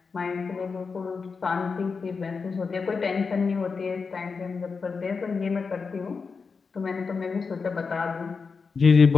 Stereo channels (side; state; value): right; quieter; 5.0 dB